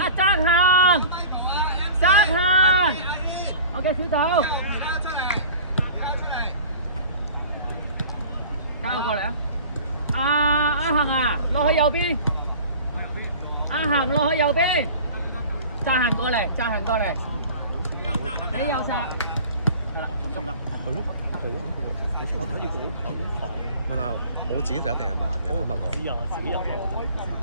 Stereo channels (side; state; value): both; inverted; correlation -0.42